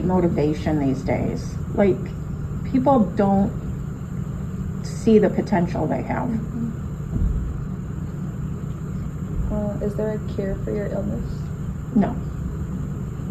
motivation these days. Like, people don't see the potential they have. Is there a cure for your illness? No.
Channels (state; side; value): identical; both; correlation 1.00